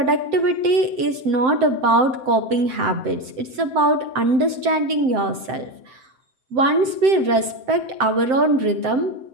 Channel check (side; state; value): left; late; 7.7 ms